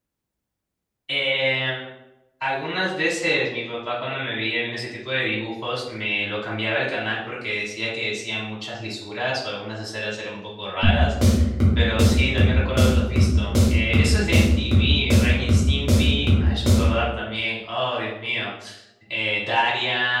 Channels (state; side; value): identical; both; correlation 1.00